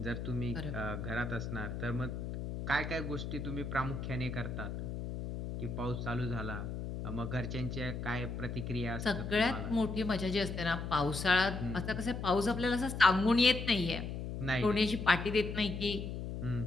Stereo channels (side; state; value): left; noise; hum, 5 dB below the sound